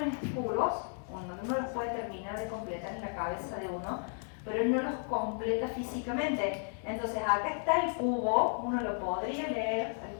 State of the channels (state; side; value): silent; right; 55 dB below the other